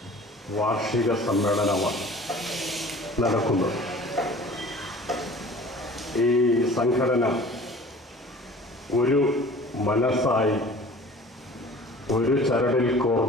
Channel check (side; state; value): both; normal; correlation 0.45